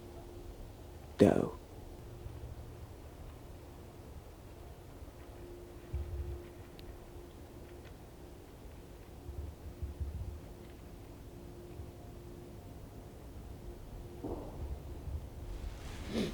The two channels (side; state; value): both; identical; correlation 1.00